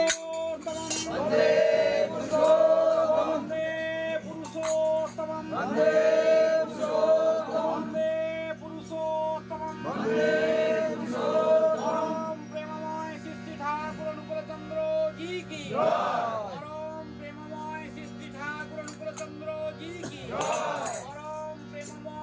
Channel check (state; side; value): identical; both; correlation 1.00